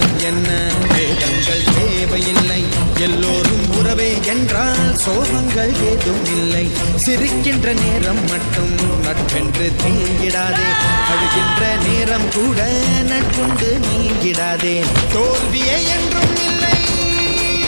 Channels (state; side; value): inverted; both; correlation -1.00